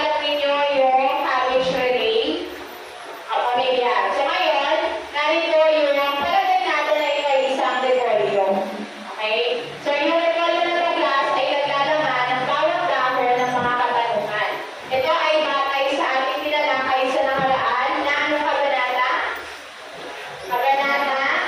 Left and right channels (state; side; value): identical; both; correlation 1.00